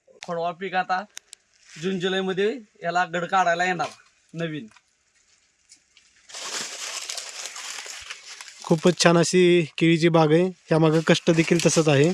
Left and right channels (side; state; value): both; identical; correlation 1.00